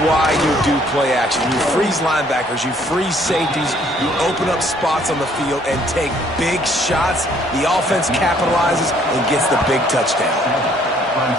why you do play action. You freeze linebackers, you freeze safeties, you open up spots on the field and take big shots. The offense capitalizes and gets the big touchdown.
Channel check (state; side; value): normal; both; correlation 0.63